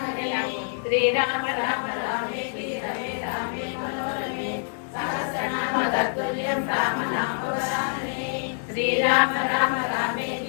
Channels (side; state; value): right; silent; digital silence